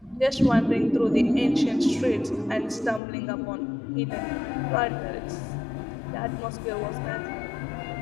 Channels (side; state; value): right; drops out; at 3.0 s